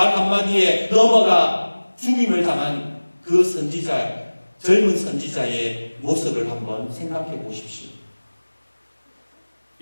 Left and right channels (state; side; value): inverted; both; correlation -1.00